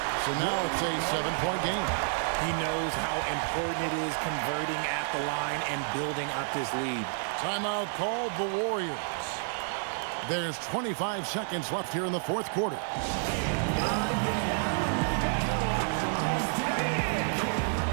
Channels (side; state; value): left; silent; digital silence